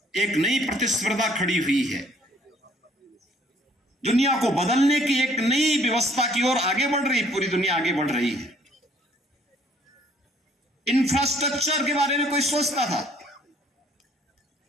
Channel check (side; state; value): both; normal; correlation 0.61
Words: एक नई प्रतिस्पर्धा खड़ी हुई है। दुनिया को बदलने की एक नई व्यवस्था की ओर आगे बढ़ रही, पूरी दुनिया आगे बढ़ रही है। इंफ्रास्ट्रक्चर के बारे में कोई सोचता था?